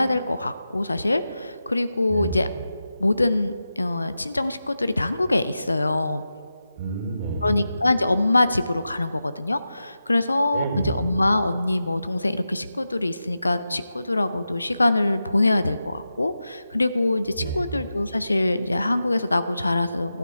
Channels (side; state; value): both; inverted; correlation -0.91